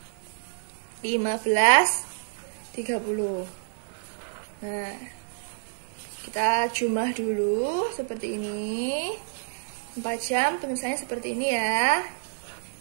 15.30. Nah, kita jumlah dulu seperti ini. 4 jam penulisannya seperti ini ya.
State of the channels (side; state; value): left; silent; digital silence